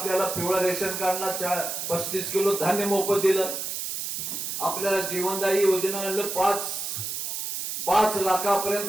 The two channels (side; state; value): right; noise; hiss, 4 dB below the sound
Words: पिवळं रेशन कार्डला 35 किलो धान्य मोफत दिलं. आपल्याला जीवनदायी योजना आणलं. 5